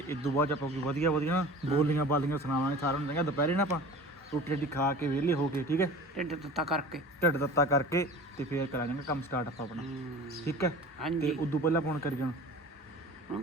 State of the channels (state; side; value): normal; both; correlation 0.39